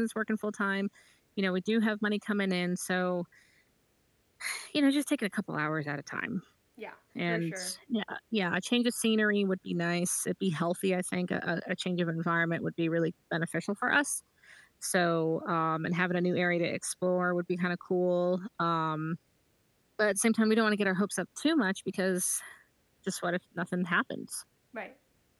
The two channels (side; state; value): both; identical; correlation 1.00